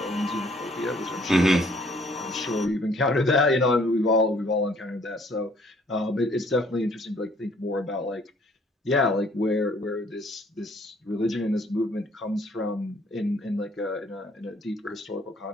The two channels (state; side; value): normal; both; correlation 0.61